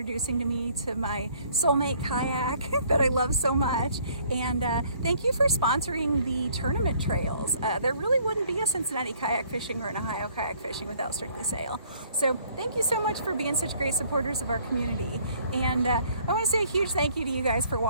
me to my soulmate kayak that I love so much. And thank you for sponsoring the tournament trails. There really wouldn't be a Cincinnati kayak fishing or an Ohio kayak fishing without Strictly Sail. So thank you so much for being such great supporters of our community. And I want to say a huge thank you to you guys for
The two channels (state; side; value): inverted; both; correlation -0.60